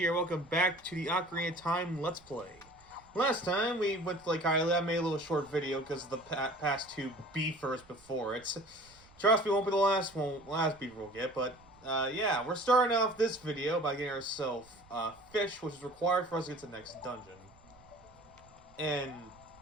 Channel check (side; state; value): right; noise; rumble, 26 dB below the sound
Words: Welcome back to the Ocarina of Time Let's Play. Last time we went to Lake Hylia. I made a little short video because of the past two beefers before it. Trust me, won't be the last beaver we'll get. But yeah, we're starting off this video by getting ourselves fish, which is required for us to get to the next dungeon. And